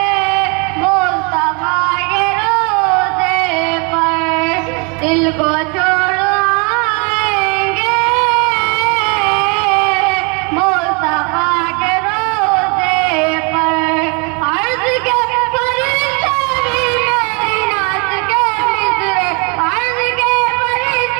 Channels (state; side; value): quieter; left; 33.0 dB